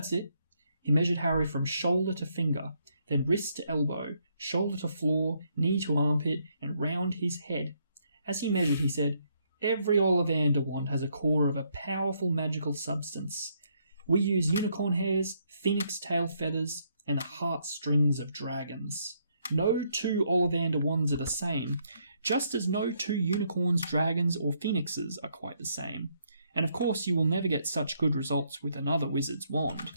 it. He measured Harry from shoulder to finger, then wrist to elbow, shoulder to floor, knee to armpit, and round his head. As he measured, he said, Every Ollivander wand has a core of a powerful magical substance. We use unicorn hairs, phoenix tail feathers, and the heartstrings of dragons. No two Ollivander wands are the same, just as no two unicorns, dragons, or phoenixes are quite the same. And of course you will never get such good results with another wizard's wand.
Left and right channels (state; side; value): inverted; both; correlation -0.73